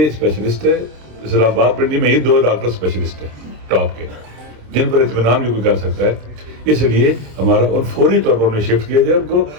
اسپیشلسٹ ہے اسلام آباد پنڈی میں, یہ 2 ڈاکٹر اسپیشلسٹ ہیں ٹاپ کے, جن پر اطمینان بھی کوئی کر سکتا ہے. اس لیے ہمارا ان فوری طور پر انہیں شفٹ کیا جائے, ان کو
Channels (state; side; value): late; left; 27 ms